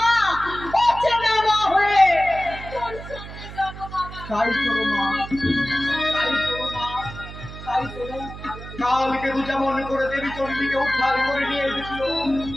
অচেনা মা হয়ে তোর সঙ্গে যাবো বাবা। তাই চলো মা, তাই চলো। কালকে তো যেমন করে দেবী চণ্ডীকে উদ্ধার করে নিয়ে এসেছিল,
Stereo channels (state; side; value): noise; right; hum, 12 dB below the sound